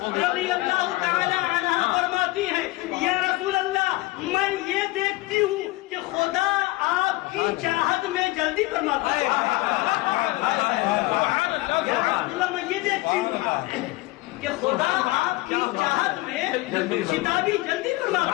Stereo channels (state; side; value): quieter; right; 20.4 dB